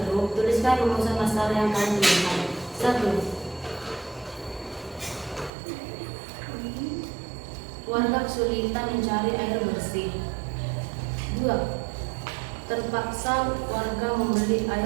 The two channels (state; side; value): drops out; left; at 5.5 s